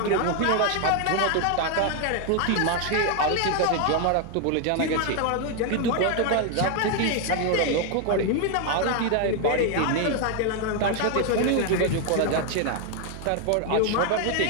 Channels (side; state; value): both; different; correlation 0.01